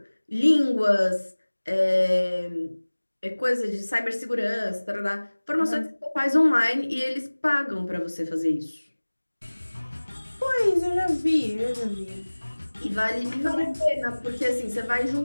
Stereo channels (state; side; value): inverted; both; correlation -1.00